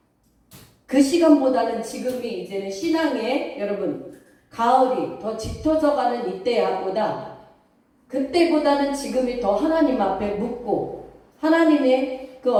그 시간보다는 지금이 이제는 신앙의 여러분 가을이 더 짙어져 가는 이때보다 그때보다는 지금이 더 하나님 앞에 묻고 하나님의 그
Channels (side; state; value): both; identical; correlation 1.00